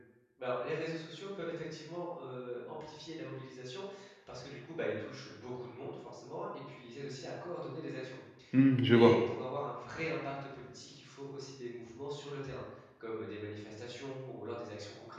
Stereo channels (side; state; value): both; identical; correlation 1.00